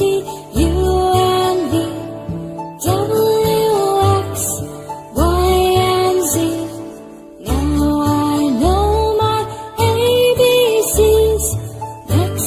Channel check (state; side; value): identical; both; correlation 1.00